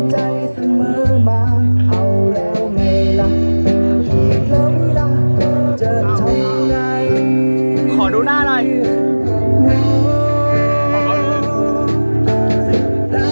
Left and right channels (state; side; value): inverted; both; correlation -1.00